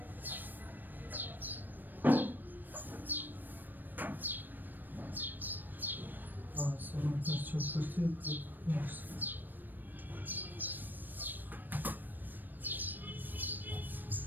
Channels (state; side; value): late; left; 0.091 ms